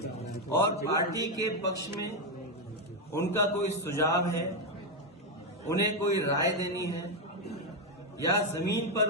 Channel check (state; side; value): normal; both; correlation 0.05